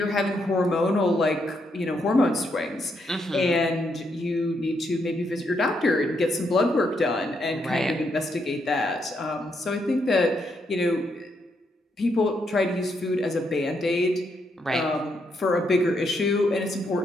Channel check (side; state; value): both; normal; correlation 0.78